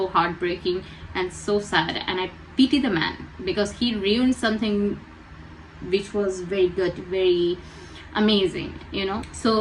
heartbreaking and so sad, and I pity the man, because he ruined something which was very good, very amazing, you know.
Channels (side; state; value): both; identical; correlation 1.00